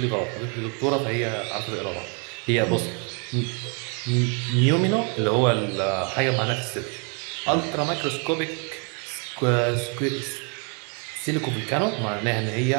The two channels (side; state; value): left; quieter; 37.3 dB